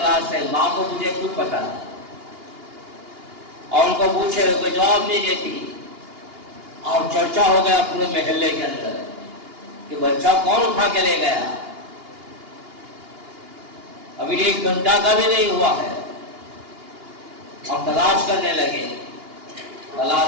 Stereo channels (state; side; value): late; left; 2.8 ms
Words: کرے، ماں کو مجھے خود پتا نہیں، اور ان کو پوچھے کوئی جواب نہیں دیتی، اور چرچا ہو گیا پورے محلے کے اندر کہ بچہ کون اٹھا کے لے گیا، ابھی 1 گھنٹہ کا بھی نہیں ہوا ہے۔ اب تلاش کرنے لگے،